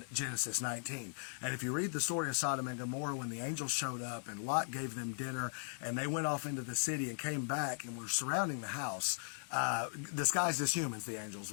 Genesis 19. And if you read the story of Sodom and Gomorrah, when the angels showed up and Lot gave them dinner and they went off into the city and came back and were surrounding the house, disguised as humans, the angels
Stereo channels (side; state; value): right; silent; digital silence